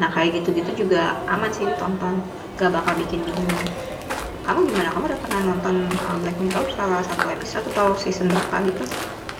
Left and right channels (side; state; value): both; identical; correlation 1.00